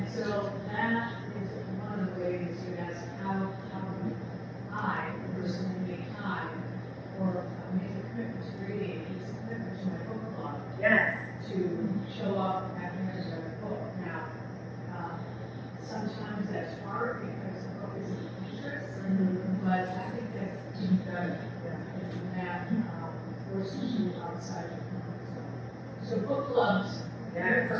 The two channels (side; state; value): both; identical; correlation 1.00